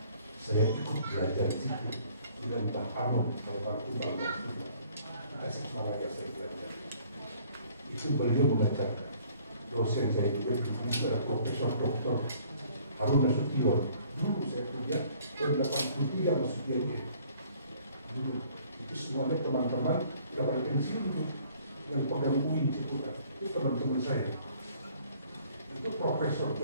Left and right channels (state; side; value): inverted; both; correlation -0.58